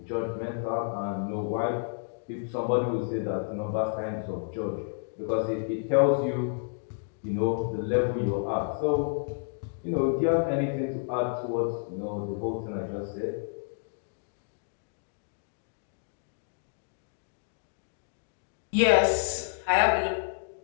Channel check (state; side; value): silent; right; digital silence